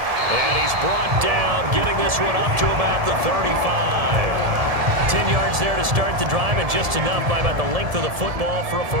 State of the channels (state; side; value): late; left; 1.7 ms